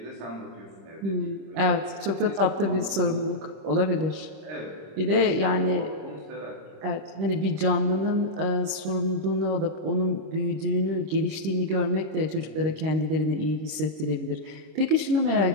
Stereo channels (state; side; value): late; left; 26 ms